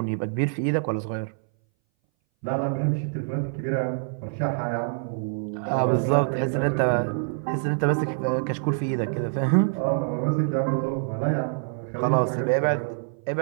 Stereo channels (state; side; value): silent; left; 59 dB below the other